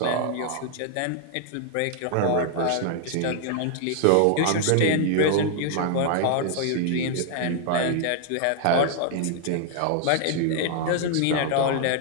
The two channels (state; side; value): different; both; correlation 0.00